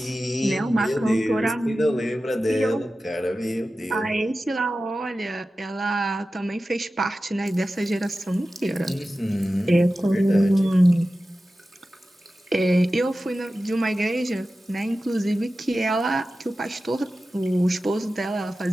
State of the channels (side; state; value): both; normal; correlation 0.94